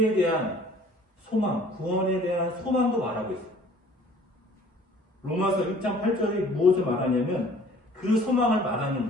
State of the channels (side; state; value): both; normal; correlation 0.52